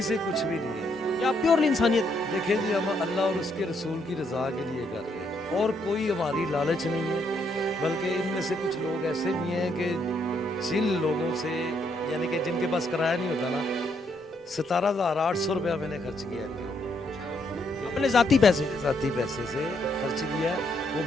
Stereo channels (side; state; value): both; normal; correlation 0.74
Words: से कुछ भी नहीं है, या प्योरली इंसानियत? देखिए जी, हम अल्लाह और उसके रसूल की रज़ा के लिए कर रहे हैं और कोई हमारी लालच नहीं है। बल्कि इनमें से कुछ लोग ऐसे भी हैं कि जिन लोगों से, यानी कि जिनके पास किराया नहीं होता ना, 17,800 रुपया मैंने खर्च किया है अपने ज़ाती पैसे से खर्च किया। वो